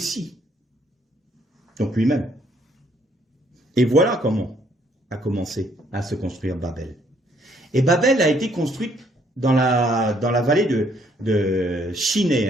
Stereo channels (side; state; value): both; normal; correlation 0.67